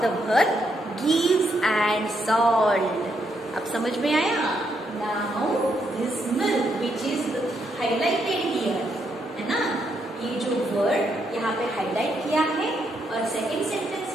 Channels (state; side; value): normal; both; correlation 0.77